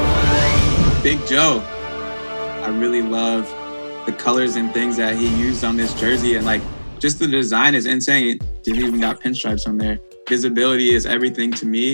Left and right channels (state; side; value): inverted; both; correlation -1.00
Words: Big Joe. I really love the colors and things that he used on this jersey, and like just the design is insane. It even got pinstripes on there. visibility is everything to